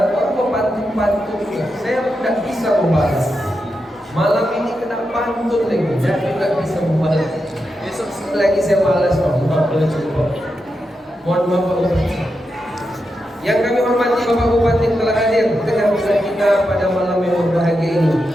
orang pantun juga, saya tidak bisa membalas. Malam ini kena pantun lagi, saya juga bisa membalas. Besok lagi saya balas, mohon maaf Bapak Bupati. Yang kami hormati Bapak Bupati telah hadir tengah-tengah kita pada malam yang berbahagia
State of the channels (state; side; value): normal; both; correlation 0.87